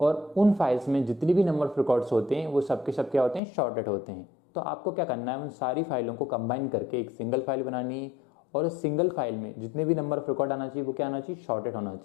और उन फाइल्स में जितनी भी नंबर ऑफ रिकॉर्ड्स होते हैं वो सबके सब क्या होते हैं, शॉर्टेड होते हैं। तो आपको क्या करना है, उन सारी फाइलों को कंबाइन करके एक सिंगल फाइल बनानी है और उस सिंगल फाइल में जितने भी नंबर ऑफ रिकॉर्ड आना चाहिए वो क्या आना चाहिए, शॉर्टेड होना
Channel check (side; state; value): right; drops out; at 3.4 s